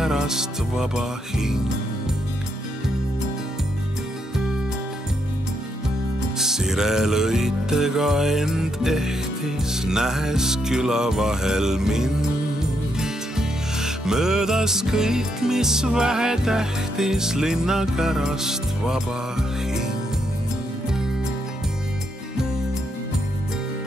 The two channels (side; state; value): both; normal; correlation 0.78